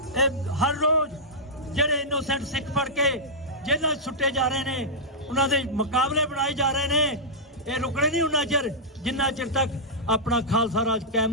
ਇਹ ਹਰ ਰੋਜ਼ ਜਿਹੜੇ ਇਨੋਸੈਂਟ ਸਿੱਖ ਫੜ ਕੇ ਜੇਲ੍ਹਾਂ ਸੁੱਟੇ ਜਾ ਰਹੇ ਨੇ, ਉਹਨਾਂ ਦੇ ਮੁਕਾਬਲੇ ਬਣਾਏ ਜਾ ਰਹੇ ਨੇ, ਇਹ ਰੁਕਣੇ ਨਹੀਂ ਉਹਨਾਂ ਚਿਰ ਜਿੰਨਾ ਚਿਰ ਤੱਕ ਆਪਣਾ ਖਾਲਸਾ ਰਾਜ ਕਾਇਮ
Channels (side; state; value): both; normal; correlation -0.11